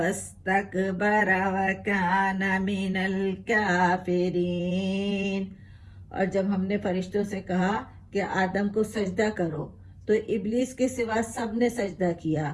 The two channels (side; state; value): both; identical; correlation 1.00